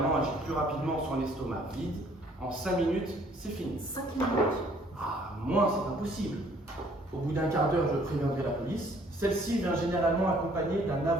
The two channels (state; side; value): normal; both; correlation 0.60